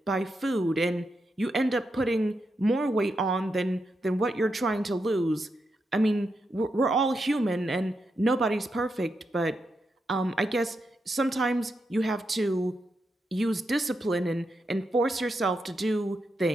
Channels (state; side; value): normal; both; correlation 0.84